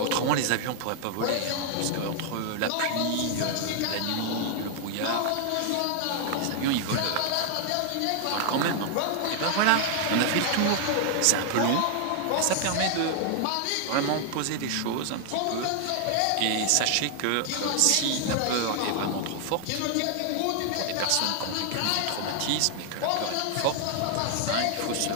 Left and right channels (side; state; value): both; different; correlation 0.00